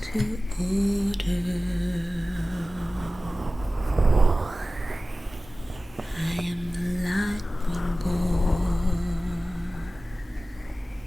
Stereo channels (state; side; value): normal; both; correlation 0.96